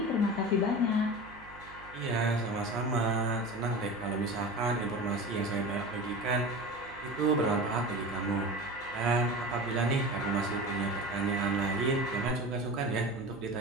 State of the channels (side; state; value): right; noise; hum, 20 dB below the sound